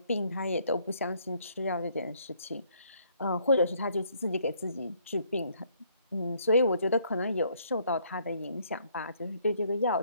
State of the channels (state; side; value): inverted; both; correlation -0.67